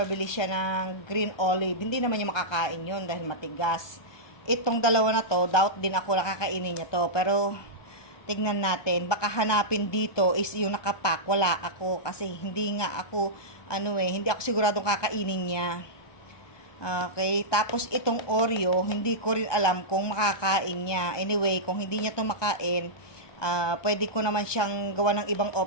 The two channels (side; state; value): right; late; 1.2 ms